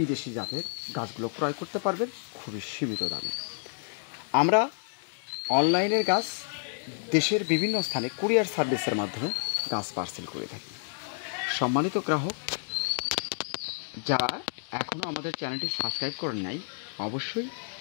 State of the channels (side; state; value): right; silent; digital silence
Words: জাতের গাছগুলো ক্রয় করতে পারবেন খুবই সীমিত দামে। আমরা অনলাইনের গাছ দেশের বিভিন্ন স্থানে কুরিয়ার সার্ভিসের মাধ্যমে গাছ পার্সেল করে থাকি। সম্মানিত গ্রাহক, যারা এখনও আমাদের চ্যানেলটি সাবস্ক্রাইব করেন নাই, অবশ্যই